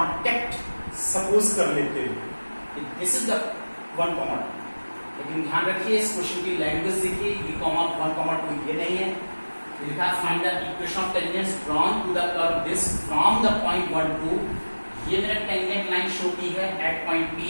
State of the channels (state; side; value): inverted; both; correlation -1.00